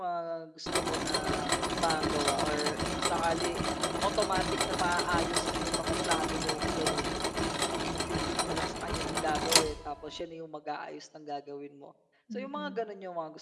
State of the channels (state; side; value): identical; both; correlation 1.00